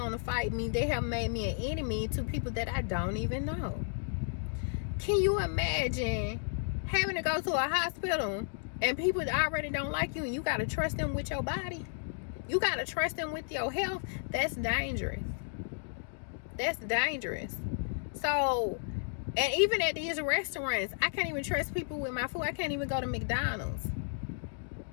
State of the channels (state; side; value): silent; right; digital silence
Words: to fight me. They have made me an enemy to people that I don't even know. Can you imagine having to go to a hospital and people that already don't like you, and you got to trust them with your body? You got to trust them with your health? That's dangerous. That's dangerous. So, and even at these restaurants, I can't even trust people with my food. I can't even go to McDonald's.